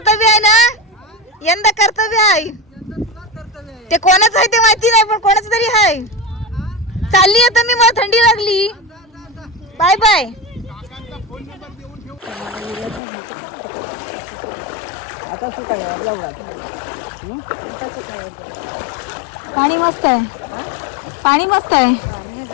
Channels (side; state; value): right; drops out; at 13.0 s